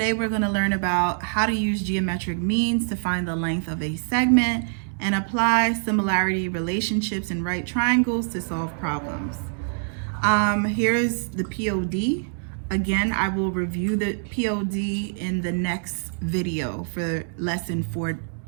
we're going to learn about how to use geometric means to find the length of a segment and apply similarity relationships in right triangles to solve problems. Here's the POD. Again, I will review the POD in the next video for lesson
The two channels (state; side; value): silent; left; digital silence